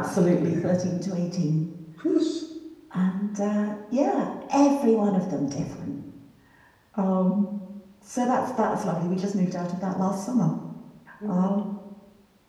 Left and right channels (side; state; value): both; identical; correlation 1.00